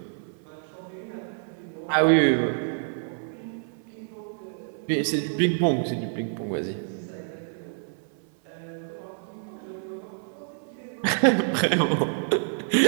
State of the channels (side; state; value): left; silent; 59 dB below the other